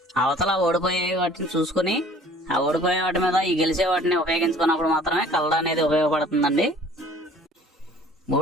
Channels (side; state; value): both; normal; correlation 0.51